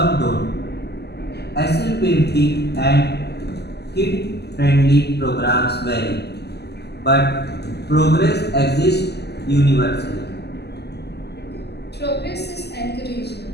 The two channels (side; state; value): right; late; 0.48 ms